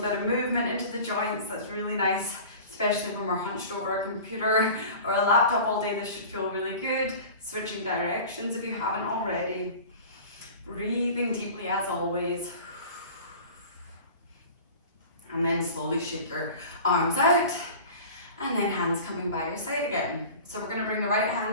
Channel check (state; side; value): inverted; both; correlation -0.38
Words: bit of movement into the joints, that's really nice. Especially when we're hunched over a computer or a laptop all day, this should feel really good. Switching directions if you haven't already. Breathing deeply as always. And then slowly shake your arms out. And then hands coming by your side again. So we're going to bring the right